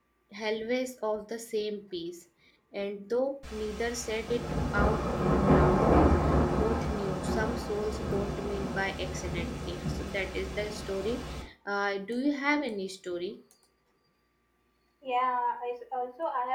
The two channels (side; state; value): both; identical; correlation 1.00